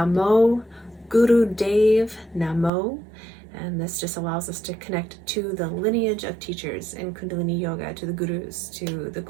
Guru Dev Namo. And this just allows us to connect to the lineage of teachers in Kundalini Yoga, to the gurus, to the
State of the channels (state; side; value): drops out; left; at 2.7 s